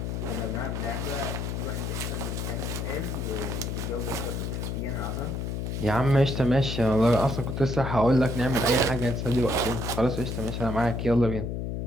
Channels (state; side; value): noise; left; hum, 3 dB below the sound